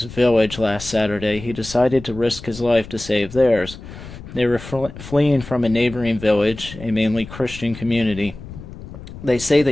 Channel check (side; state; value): left; noise; rumble, 14 dB below the sound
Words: village last Saturday, he decided to risk his life to save theirs. They were fleeing from a neighboring village, a mainly Christian community. They say